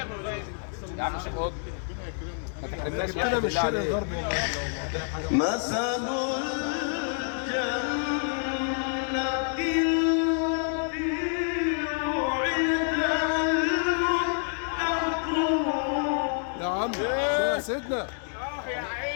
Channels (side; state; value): right; silent; 57 dB below the other